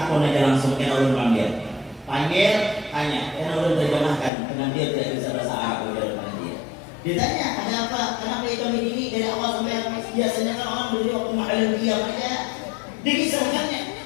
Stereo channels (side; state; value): right; drops out; at 4.3 s